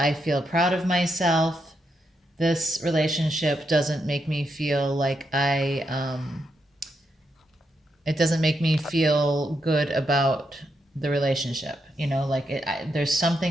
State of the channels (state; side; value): normal; both; correlation 0.82